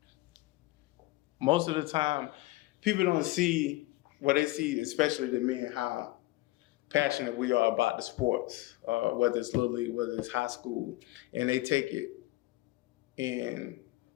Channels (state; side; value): quieter; right; 19.4 dB